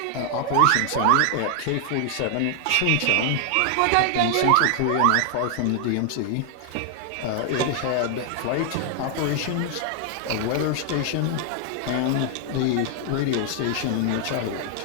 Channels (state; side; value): different; both; correlation 0.00